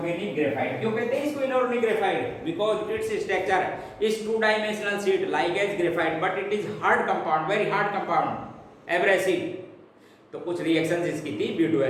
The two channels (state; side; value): identical; both; correlation 1.00